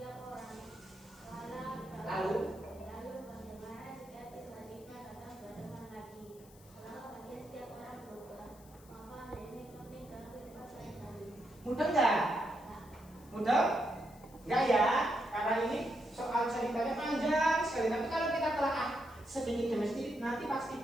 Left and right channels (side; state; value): left; noise; hiss, 24 dB below the sound